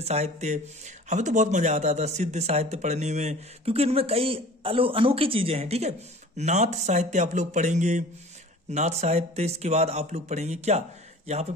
साहित्य। हमें तो बहुत मजा आता था सिद्ध साहित्य पढ़ने में, क्योंकि इनमें कई अनोखी चीजें हैं। ठीक है, नाथ साहित्य आप लोग पढ़ेंगे, नाथ साहित्य। इसके बाद आप लोग पढ़ेंगे क्या, यहाँ पे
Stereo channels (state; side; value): normal; both; correlation 0.43